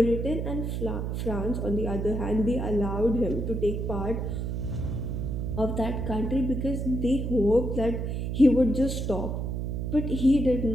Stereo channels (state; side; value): noise; right; hum, 2 dB below the sound